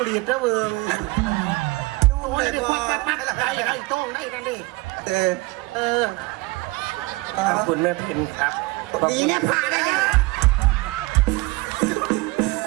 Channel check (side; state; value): left; quieter; 22.7 dB